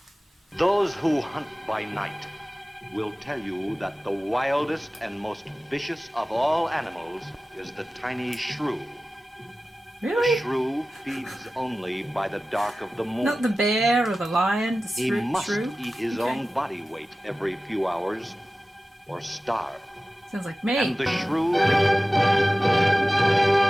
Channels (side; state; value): both; normal; correlation 0.96